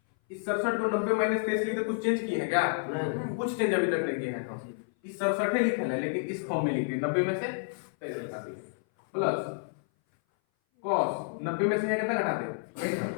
इस 67 को 90 माइनस 23 लिखते कुछ चेंज किए हैं क्या? नहीं, कुछ चेंज अभी तक नहीं किए हैं हम। इस 67 लिखा है लेकिन इस फॉर्म में लिखे 90 में से 23 घटा दिए, प्लस कॉस 90 में से कितना घटा दे?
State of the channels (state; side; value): silent; right; 57 dB below the other